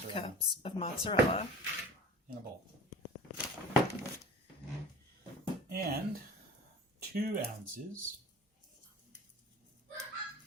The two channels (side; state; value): both; normal; correlation 0.40